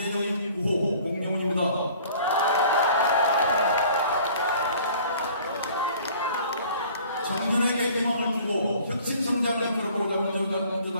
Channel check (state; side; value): inverted; both; correlation -0.51